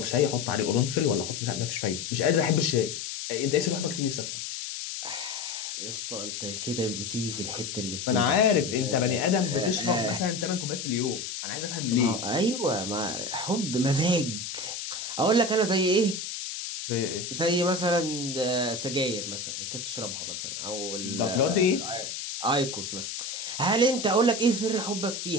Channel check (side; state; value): left; noise; hiss, 6 dB below the sound